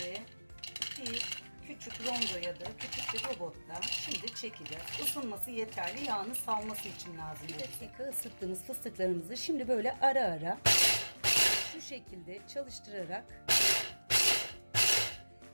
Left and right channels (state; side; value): inverted; both; correlation -1.00